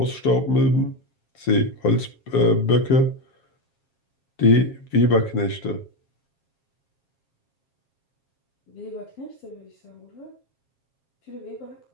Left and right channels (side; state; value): right; late; 7.4 ms